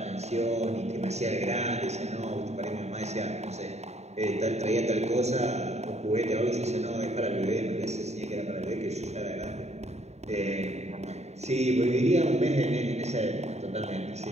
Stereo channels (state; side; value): late; left; 0.32 ms